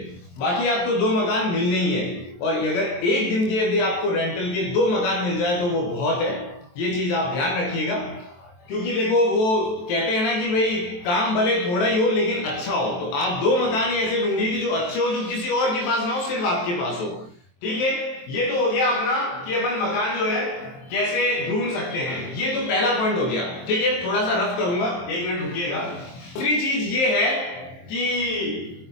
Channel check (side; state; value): right; late; 23 ms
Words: बाकी आपको 2 मकान मिलने ही है। और अगर एक दिन के यदि आपको रेंटल के 2 मकान मिल जाए तो वो बहुत है। ये चीज आप ध्यान रखिएगा, क्योंकि देखो वो कहते हैं ना कि भाई काम भले थोड़ा ही हो लेकिन अच्छा हो। तो आप 2 मकान ही ऐसे ढूंढिए कि जो अच्छे हो, जो किसी और के पास ना हो, सिर्फ आपके पास हो, ठीक है। ये तो हो गया अपना कि अपन मकान जो है कैसे ढूंढ सकते हैं। ये तो पहला पॉइंट हो गया, ठीक है। थोड़ा सा रफ करूंगा, 1 मिनट रुकिएगा। दूसरी चीज ये है कि